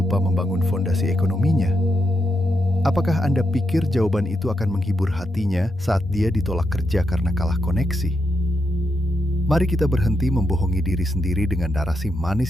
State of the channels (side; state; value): both; normal; correlation 0.83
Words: membangun fondasi ekonominya? Apakah Anda pikir jawaban itu akan menghibur hatinya saat dia ditolak kerja karena kalah koneksi? Mari kita berhenti membohongi diri sendiri dengan narasi